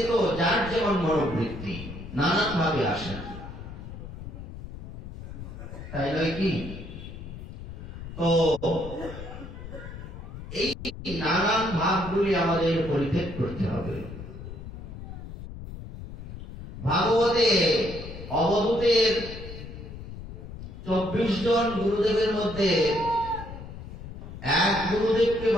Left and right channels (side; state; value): left; noise; rumble, 11 dB below the sound